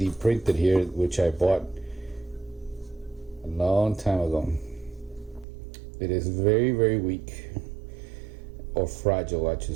printed here, which I bought a long time ago. It is very, very weak, or fragile, I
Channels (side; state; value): left; drops out; at 5.5 s